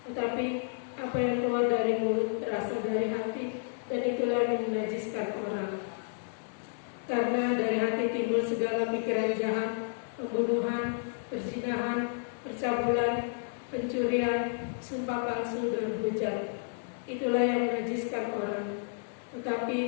Tetapi apa yang keluar dari mulut berasal dari hati, dan itulah yang menajiskan orang. Karena dari hati timbul segala pikiran jahat, pembunuhan, perzinahan, percabulan, pencurian, sumpah palsu, dan hujat. Itulah yang menajiskan orang.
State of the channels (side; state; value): right; silent; 55 dB below the other